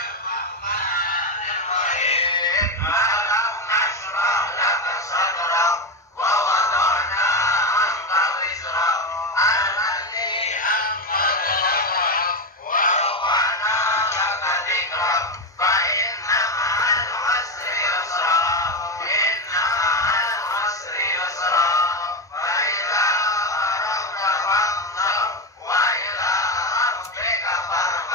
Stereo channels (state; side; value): normal; both; correlation 0.12